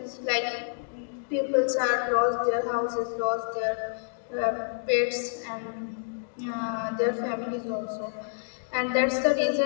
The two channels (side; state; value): right; silent; digital silence